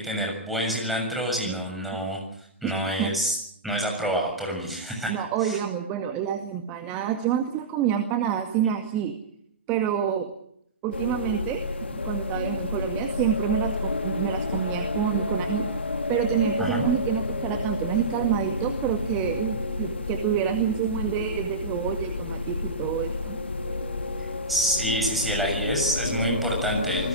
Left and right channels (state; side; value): quieter; left; 3.1 dB